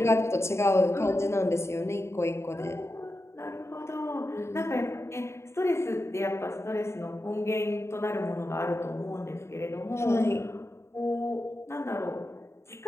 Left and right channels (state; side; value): late; right; 0.13 ms